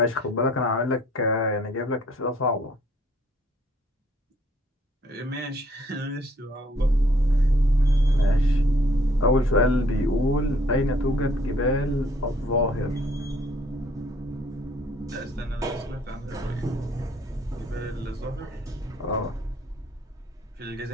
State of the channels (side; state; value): both; normal; correlation 0.62